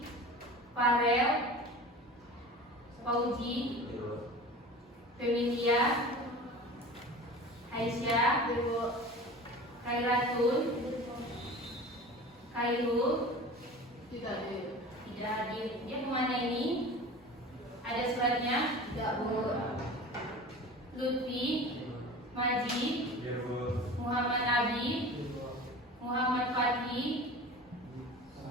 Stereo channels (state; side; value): normal; both; correlation 0.37